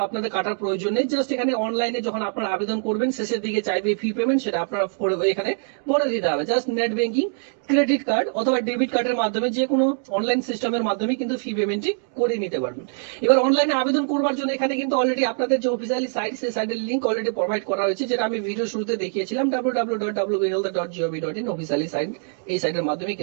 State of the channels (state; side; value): silent; left; 63 dB below the other